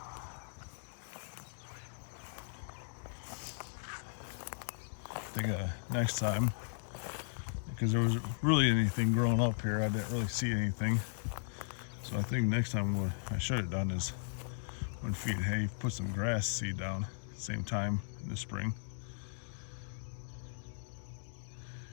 I think next time, because there was really anything growing up here, I didn't really see anything. So I think next time what I should have done is when feeding hay, put some grass seed down same time in the spring.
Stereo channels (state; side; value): silent; right; digital silence